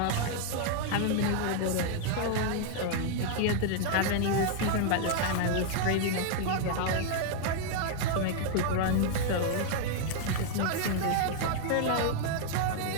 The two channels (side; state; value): both; different; correlation 0.00